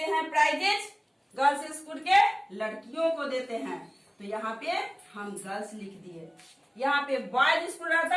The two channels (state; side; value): identical; both; correlation 1.00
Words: हैं प्राइजेज, गर्ल्स स्कूल के लड़कियों को देते हैं। तो यहाँ पे हम गर्ल्स लिख दिए। यहाँ पे बॉयज स्कूल